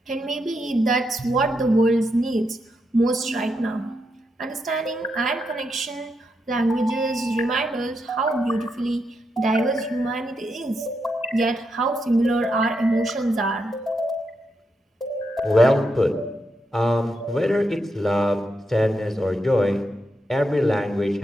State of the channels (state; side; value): normal; both; correlation 0.83